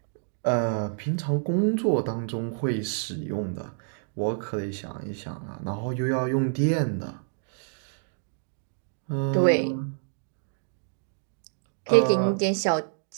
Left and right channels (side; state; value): left; silent; digital silence